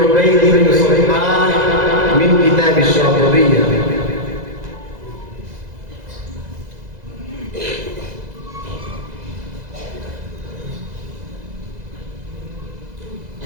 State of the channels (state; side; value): late; left; 2.0 ms